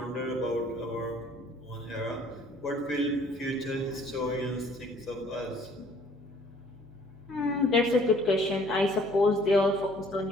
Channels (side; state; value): both; normal; correlation 0.57